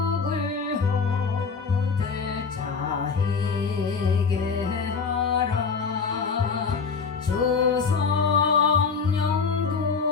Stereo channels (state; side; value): quieter; right; 5.3 dB